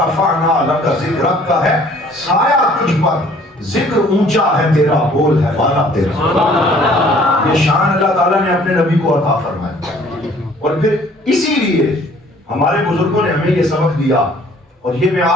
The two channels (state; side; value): normal; both; correlation 0.56